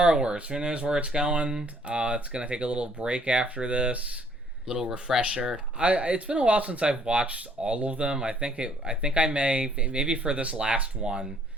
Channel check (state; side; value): normal; both; correlation 0.62